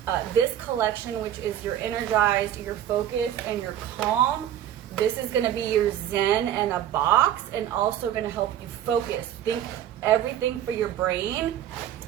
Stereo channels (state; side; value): quieter; left; 11.0 dB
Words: this collection, which is your energized, your focused, and your calm. This is gonna be your zen in a box, and also gonna help you focus. Think everything for your brain.